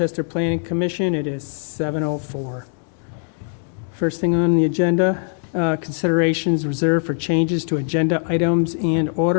Planning Commission. It is 7:04. First thing on the agenda, considerations reserved for changes to agenda items and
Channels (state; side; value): silent; right; 65 dB below the other